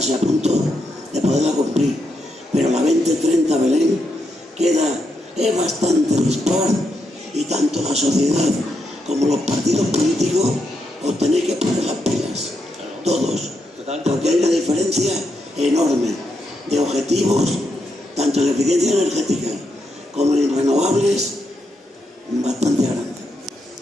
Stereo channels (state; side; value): normal; both; correlation 0.82